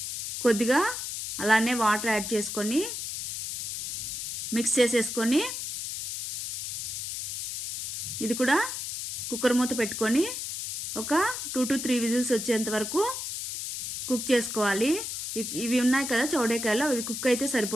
కొద్దిగా అలానే వాటర్ యాడ్ చేసుకొని మిక్స్ చేసేసుకొని ఇది కూడా కుక్కర్ మూత పెట్టుకొని ఒక 2 to 3 విజిల్స్ వచ్చేంత వరకు కుక్ చేసుకోవాలి. ఇవి ఉన్నాయి కదా చౌడేకాయలు, అవి కుక్ అయితే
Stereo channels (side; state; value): left; noise; hiss, 5 dB below the sound